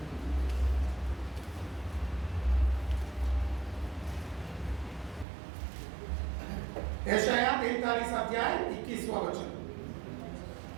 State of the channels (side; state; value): left; drops out; at 5.2 s